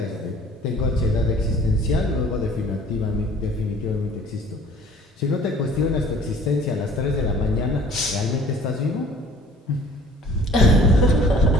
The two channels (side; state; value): both; normal; correlation 0.51